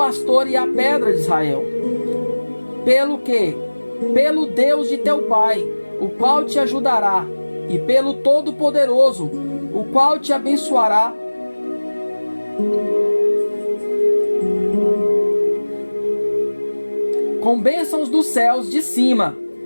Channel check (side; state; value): both; inverted; correlation -1.00